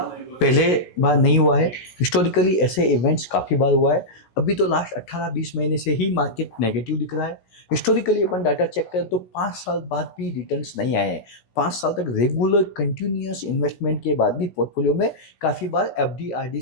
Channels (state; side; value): late; right; 16 ms